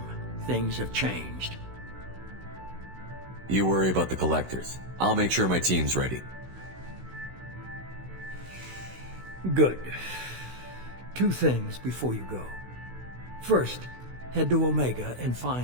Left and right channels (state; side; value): late; left; 16 ms